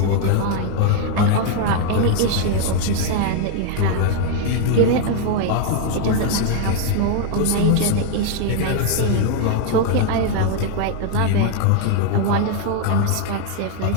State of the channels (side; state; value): both; different; correlation 0.00